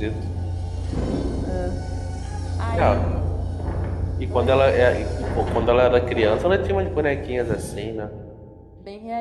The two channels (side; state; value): both; identical; correlation 1.00